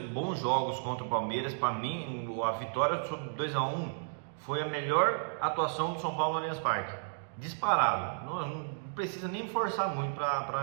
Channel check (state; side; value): silent; left; digital silence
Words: jogos contra o Palmeiras. Para mim a vitória sobre 2-1 foi a melhor atuação do São Paulo no Allianz Parque, disparado, não precisa nem forçar muito